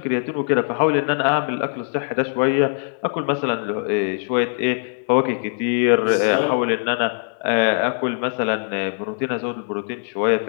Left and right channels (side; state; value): right; silent; 56 dB below the other